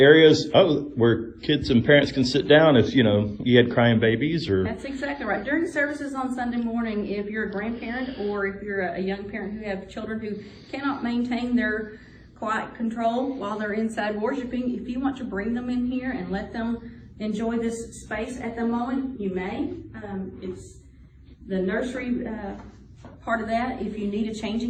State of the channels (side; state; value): both; identical; correlation 1.00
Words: where kids and parents can sit down if you had crying babies or. That's exactly right. During services on Sunday morning, if you're a grandparent or if you're a young parent who have children who cannot maintain their quiet control while they're inside worshiping, if you want to bring them in here and let them enjoy this space at the moment, you may. It's the nursery part of that. If you need a